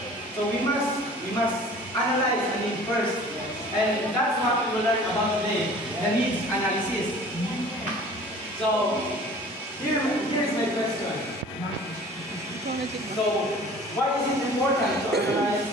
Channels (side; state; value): both; normal; correlation 0.46